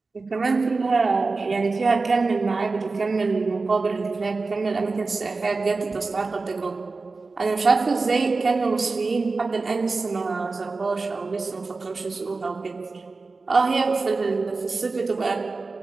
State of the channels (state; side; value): quieter; left; 3.9 dB